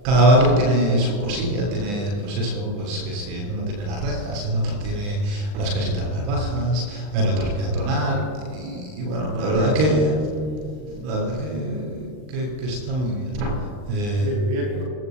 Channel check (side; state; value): left; late; 39 ms